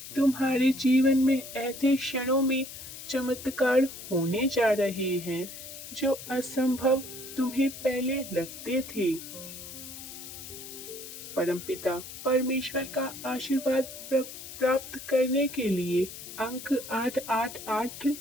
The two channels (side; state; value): left; noise; hiss, 12 dB below the sound